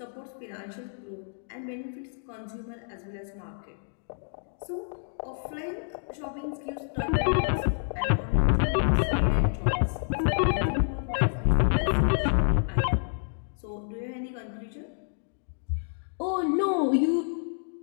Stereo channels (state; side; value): silent; right; digital silence